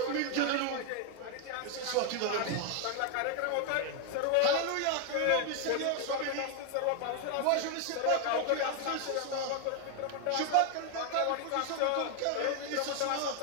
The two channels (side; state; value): both; different; correlation 0.00